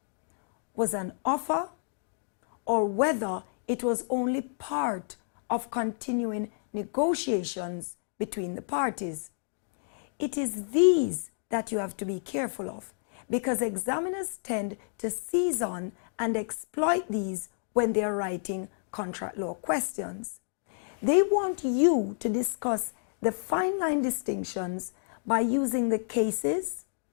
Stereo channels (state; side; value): silent; right; digital silence